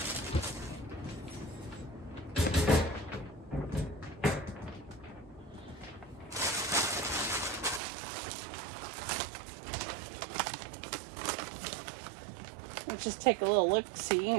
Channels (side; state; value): left; drops out; at 7.8 s